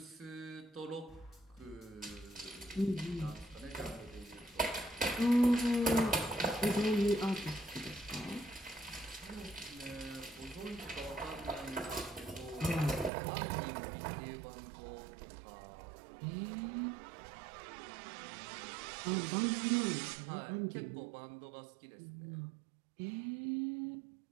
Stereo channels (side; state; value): left; drops out; at 13.1 s